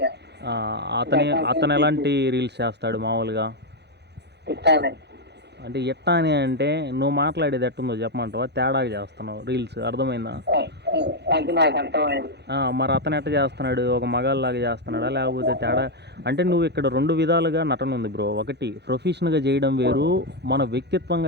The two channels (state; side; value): late; left; 0.49 ms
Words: అతను ఎలాంటి రీల్స్ చేస్తాడు మామూలుగా? అంటే ఎట్టా అని అంటే నువ్వు మాట్లాడేది ఎట్టుందో చెప్పమంటావా? తేడాగా చేస్తున్నావు రీల్స్, అర్థమైందా? మరి అతను ఎట్ట చేస్తున్నాడు? ఒక మగాళ్ళలాగా చేస్తున్నాడా లేకపోతే తేడా? అంటే నువ్వు ఇక్కడ 2 విధాలుగా నటన ఉంది బ్రో. ఒకటి ప్రొఫెషనల్గా చేయడం వేరు, మన